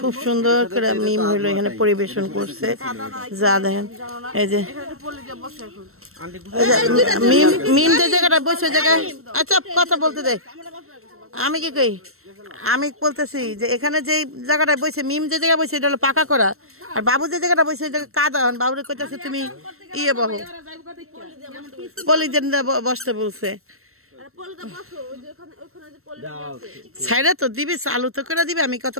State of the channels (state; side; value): late; left; 0.62 ms